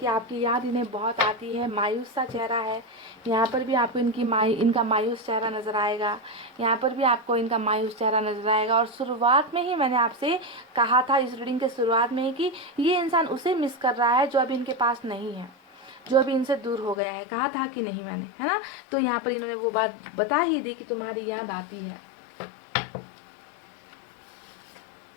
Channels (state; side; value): drops out; right; at 17.0 s